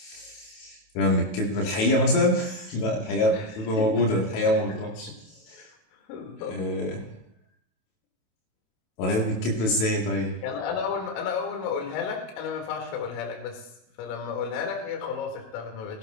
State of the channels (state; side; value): late; right; 27 ms